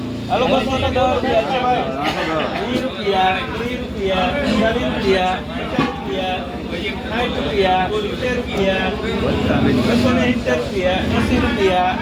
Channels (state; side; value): identical; both; correlation 1.00